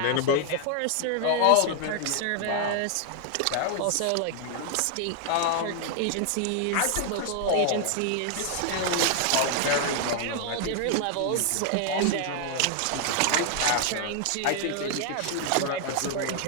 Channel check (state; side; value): different; both; correlation 0.00